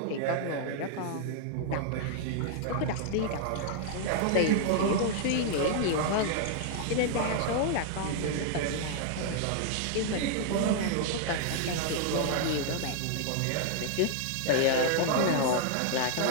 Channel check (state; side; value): different; both; correlation 0.00